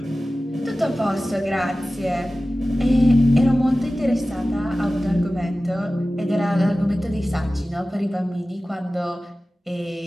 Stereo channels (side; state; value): both; normal; correlation 0.96